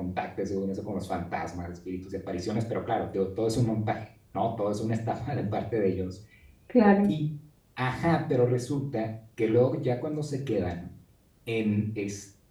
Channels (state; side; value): identical; both; correlation 1.00